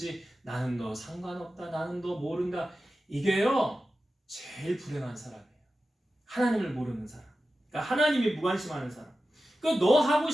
나는 너 상관없다. 나는 너 모른다. 이게요 제일 불행한 사람이에요. 하나님을 모르는 사람. 그러니까 하나님이 무관심하는 사람. 그러니까 너 하고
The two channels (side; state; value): both; normal; correlation 0.93